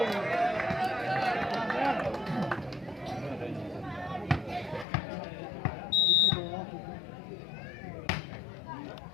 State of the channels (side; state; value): right; drops out; at 4.9 s